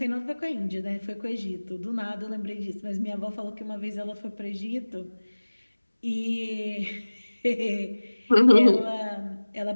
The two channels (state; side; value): inverted; both; correlation -1.00